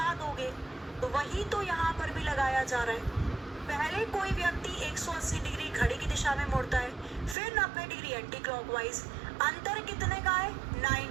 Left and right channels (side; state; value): left; drops out; at 7.4 s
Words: दोगे, तो वही तो यहाँ पर भी लगाया जा रहा है। पहले कोई व्यक्ति 180 डिग्री घड़ी की दिशा में मुड़ता है, फिर 90 डिग्री एंटी क्लॉकवाइज। अंतर कितने का है?